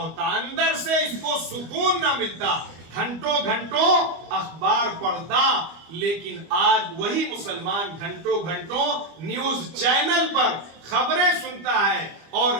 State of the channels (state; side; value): late; left; 25 ms